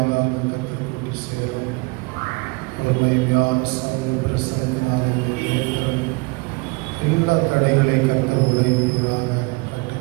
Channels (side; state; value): left; quieter; 27.3 dB